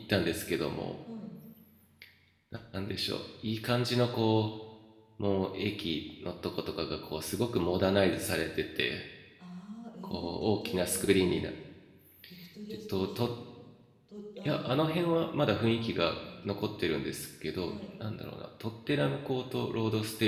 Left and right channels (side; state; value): both; identical; correlation 1.00